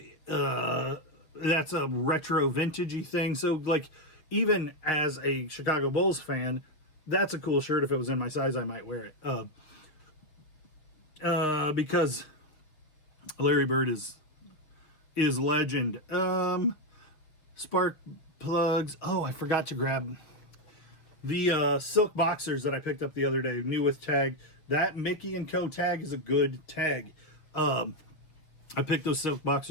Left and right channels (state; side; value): late; right; 6.6 ms